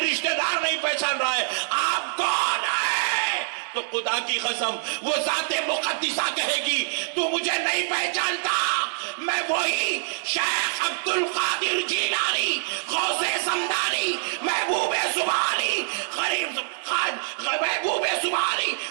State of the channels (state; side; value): silent; left; digital silence